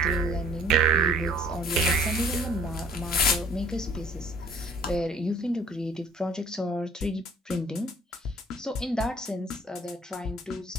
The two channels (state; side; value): normal; both; correlation 0.54